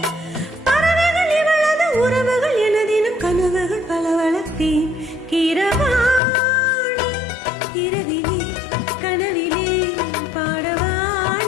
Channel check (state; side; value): drops out; right; at 6.2 s